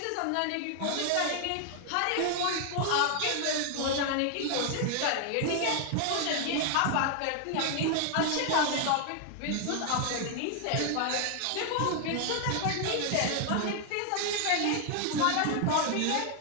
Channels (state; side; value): different; both; correlation 0.00